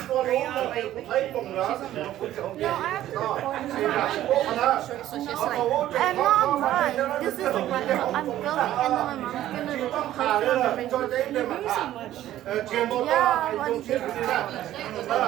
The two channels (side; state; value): left; quieter; 13.2 dB